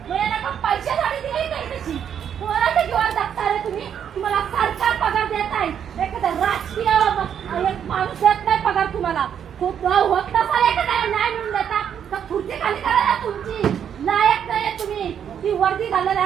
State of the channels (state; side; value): quieter; left; 8.6 dB